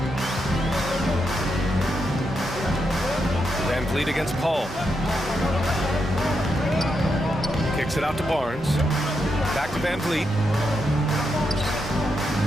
Van Vliet against Paul. Kicks it out to Barnes. Back to Van Vliet.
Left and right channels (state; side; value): normal; both; correlation 0.83